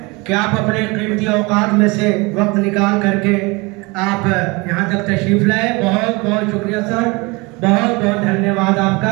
कि आप अपने कीमती औकात में से वक्त निकाल करके आप यहाँ तक तशरीफ लाए। बहुत बहुत शुक्रिया सर, बहुत बहुत धन्यवाद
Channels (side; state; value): left; quieter; 26.0 dB